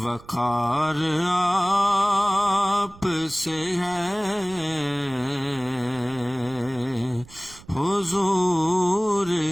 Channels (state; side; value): noise; right; rumble, 21 dB below the sound